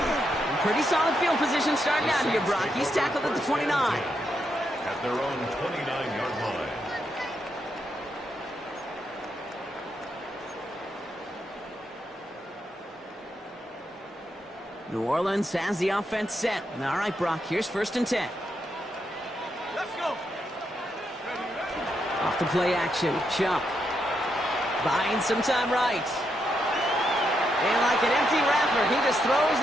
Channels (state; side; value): normal; both; correlation 0.81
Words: Pretty solid field position starting out here, Brock. He's tackled at the 29. At their own 29-yard line. New Orleans has the offense set. All right, Brock, here's 1st and 10. Let's go. Off the play action, Chubb. Buying some time right. And like an empty wrapper, he just throws